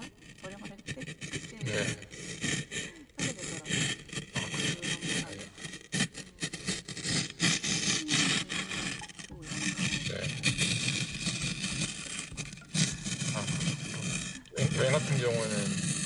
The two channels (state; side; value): identical; both; correlation 1.00